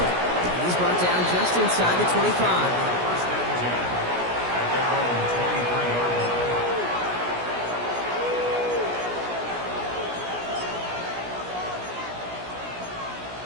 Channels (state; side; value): late; left; 17 ms